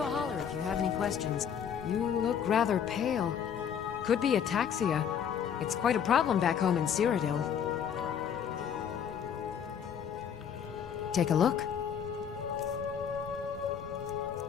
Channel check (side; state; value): right; quieter; 8.1 dB